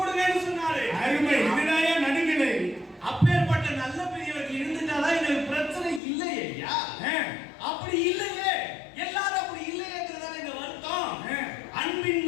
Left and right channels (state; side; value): drops out; right; at 6.0 s